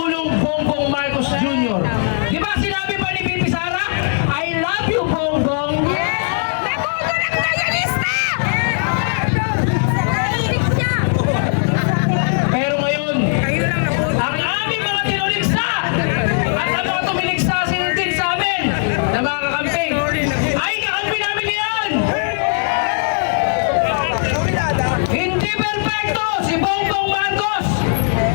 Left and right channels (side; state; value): right; silent; 61 dB below the other